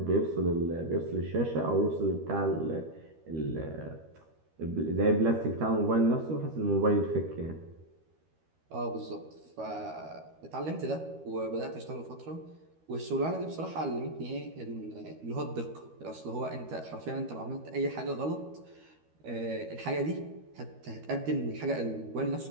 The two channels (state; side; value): late; left; 13 ms